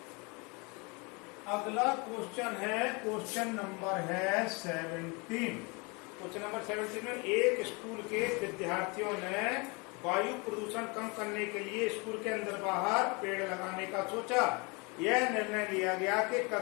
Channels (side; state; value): right; quieter; 29.6 dB